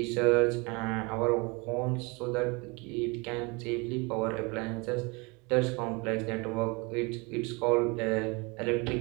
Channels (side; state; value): left; quieter; 28.1 dB